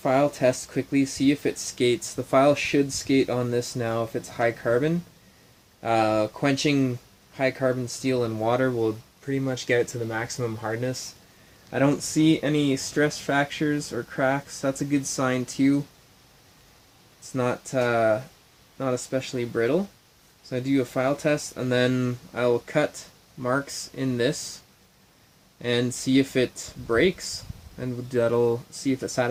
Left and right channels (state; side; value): identical; both; correlation 1.00